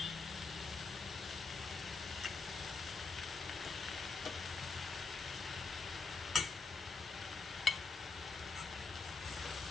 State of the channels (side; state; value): right; quieter; 4.3 dB